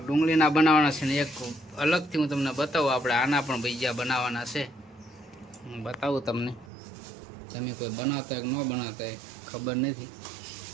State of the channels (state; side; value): drops out; left; at 6.7 s